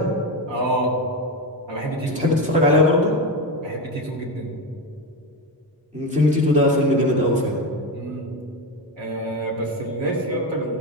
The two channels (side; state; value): both; normal; correlation 0.15